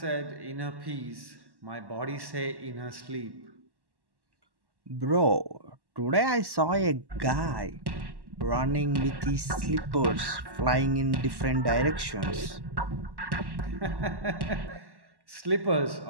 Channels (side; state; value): left; late; 1.1 ms